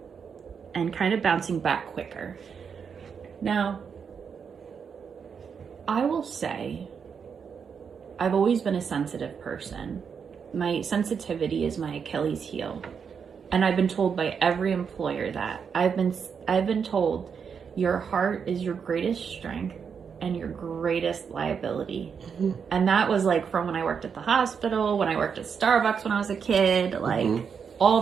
and kind of bouncing back quicker. Now, I will say, I've always been a sensitive person. My sensitivity is my Achilles heel. And I've been told by every employer that. I've been told your heart is your greatest strength and your greatest liability. And that was like from when I worked at the hospital, when I worked at Starbucks when I was a kid, like all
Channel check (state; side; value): quieter; left; 6.6 dB